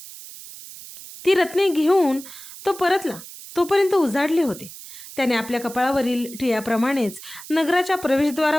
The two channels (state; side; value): noise; right; hiss, 15 dB below the sound